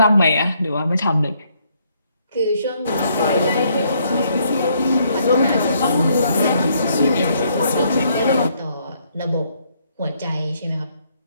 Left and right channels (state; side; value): inverted; both; correlation -0.71